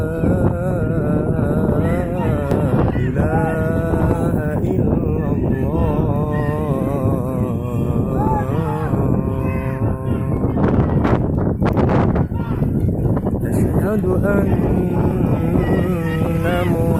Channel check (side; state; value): both; identical; correlation 1.00